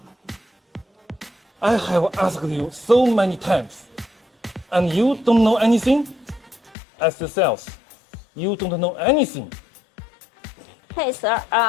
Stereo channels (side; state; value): right; drops out; at 6.8 s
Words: I have asked you so many times, and you don't know anything? As the sales, you don't know anything. Hey sir,